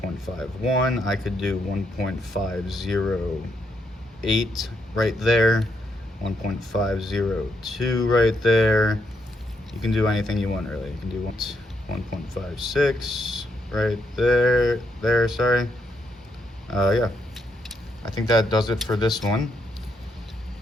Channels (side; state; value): both; normal; correlation 0.78